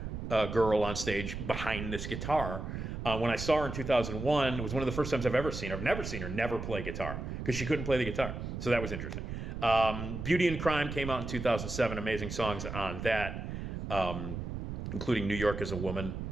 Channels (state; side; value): noise; right; rumble, 6 dB below the sound